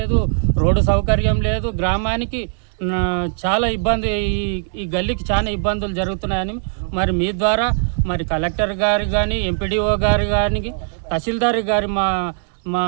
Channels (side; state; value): left; silent; digital silence